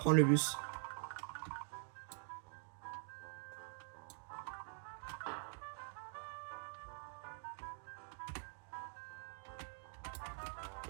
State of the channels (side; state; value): left; silent; digital silence